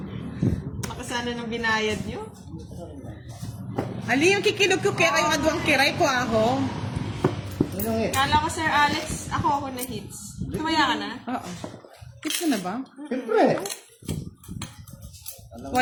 Makasana ng binayad nyo. Ali, yung kikilog ko kaya yung adwang Kiray ko ako. Ano eh? Kala ko, Sir Alex, ako na hits. Tumaya ka na? Oo. Hits mo na ba? Siyempre.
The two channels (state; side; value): identical; both; correlation 1.00